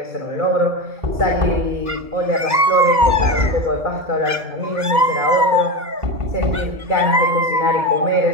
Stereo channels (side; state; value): left; late; 2.0 ms